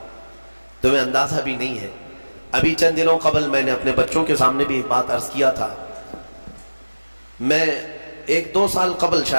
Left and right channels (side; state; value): both; inverted; correlation -1.00